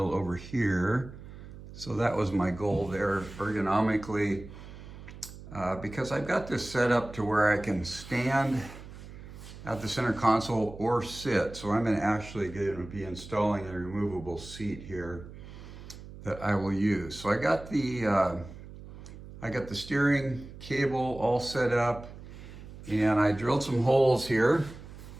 over here. So that was my goal there ergonomically, because I've got this set up to where I can stand at the center console or sit. So I'm actually going to be installing a removable seat here that I will use. So I got the steering cable all set up, and I drilled some holes here.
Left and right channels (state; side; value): noise; right; hum, 15 dB below the sound